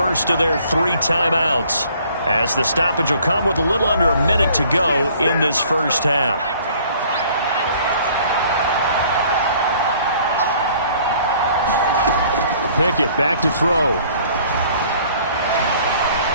of their 3 timeouts, as the stoppage will come with a little under a minute to go in this first half. Pickett back to throw.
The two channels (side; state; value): both; inverted; correlation -0.57